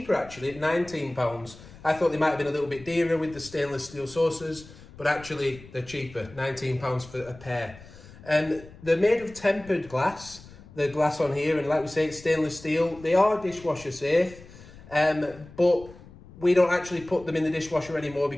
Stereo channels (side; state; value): left; noise; rumble, 19 dB below the sound